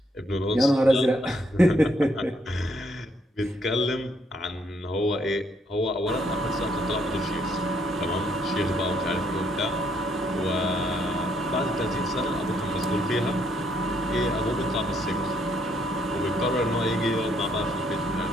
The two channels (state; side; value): normal; both; correlation 0.71